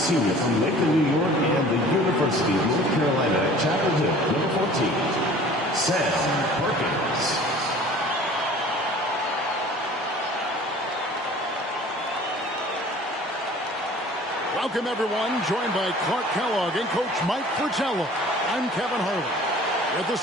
from Lakeland, New York, and the University of North Carolina at Chapel Hill, number 14, Sam Perkins. Welcome, everyone. Joined by Clark Kellogg and Coach Mike Fratello. I'm Kevin Harlan. With us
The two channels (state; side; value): normal; both; correlation 0.47